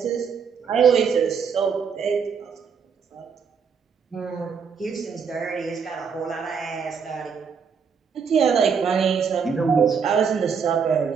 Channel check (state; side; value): quieter; left; 6.3 dB